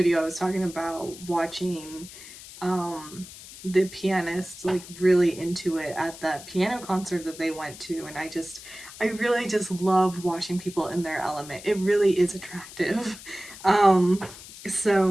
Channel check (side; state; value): left; noise; hiss, 16 dB below the sound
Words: I was talking about watching the pianist like really into it at that piano concert that they went to, and I really just love watching people in their element. It really is attractive.